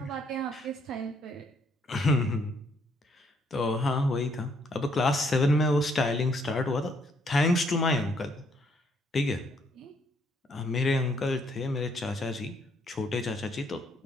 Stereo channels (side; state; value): both; normal; correlation 0.69